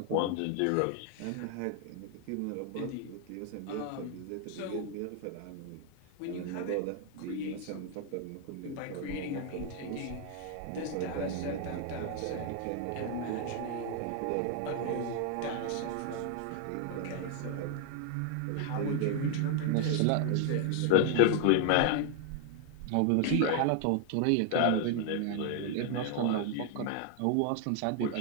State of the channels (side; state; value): both; different; correlation 0.00